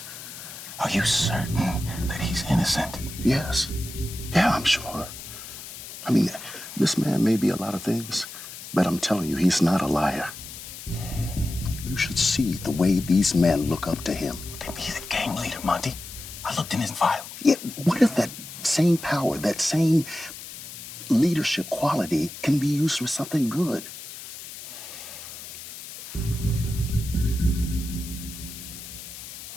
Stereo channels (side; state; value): left; noise; hiss, 12 dB below the sound